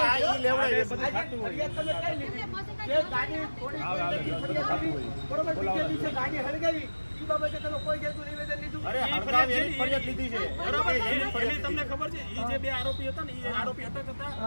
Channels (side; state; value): both; inverted; correlation -1.00